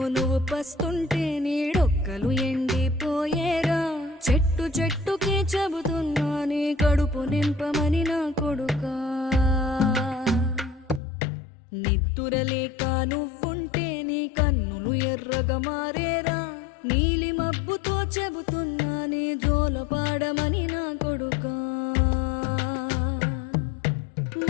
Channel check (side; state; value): right; drops out; at 11.0 s